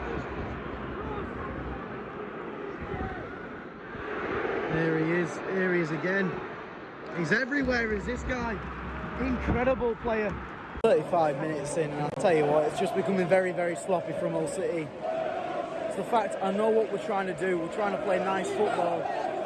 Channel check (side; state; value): both; identical; correlation 1.00